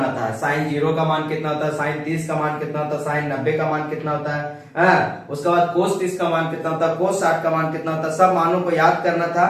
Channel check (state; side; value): identical; both; correlation 1.00